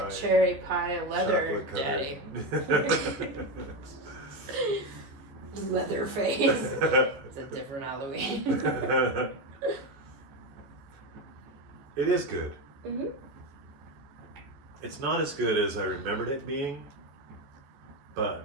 cherry pie leather Chocolate daddy. Leatherface. It's a different Halloween. It is good. Mm-hmm. It's not as good as I remembered it being,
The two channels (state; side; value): late; left; 14 ms